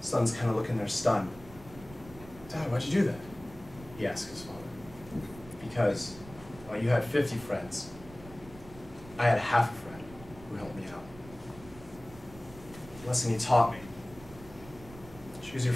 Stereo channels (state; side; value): noise; right; rumble, 18 dB below the sound